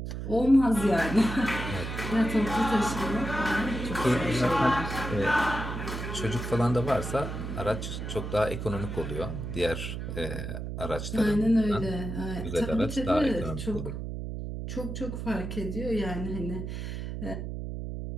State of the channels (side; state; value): right; noise; hum, 6 dB below the sound